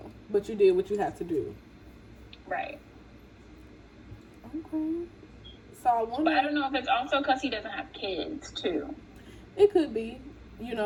but you did what you had to do. Right. Okay. So I wonder. But I don't know if it's also because he doesn't have kids, too. It could be.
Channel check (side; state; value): both; identical; correlation 1.00